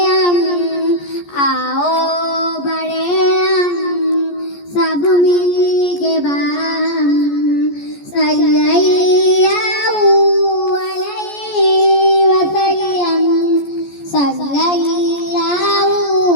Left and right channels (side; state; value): right; late; 14 ms